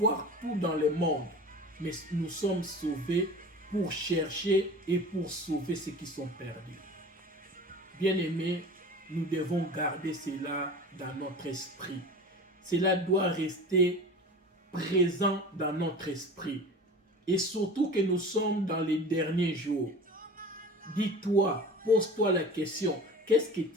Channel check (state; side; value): normal; both; correlation 0.37